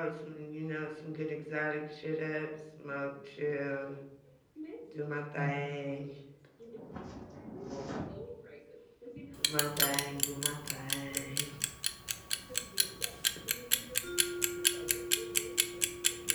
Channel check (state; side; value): identical; both; correlation 1.00